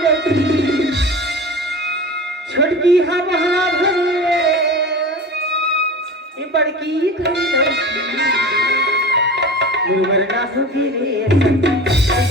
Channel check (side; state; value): both; normal; correlation 0.34